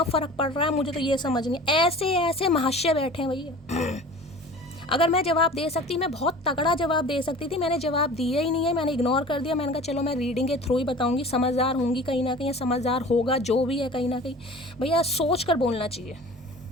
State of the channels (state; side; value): normal; both; correlation 0.41